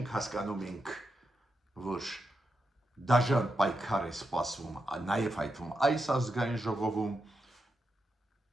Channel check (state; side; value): normal; both; correlation 0.86